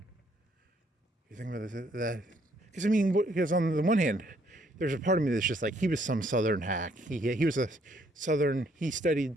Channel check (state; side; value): normal; both; correlation 0.68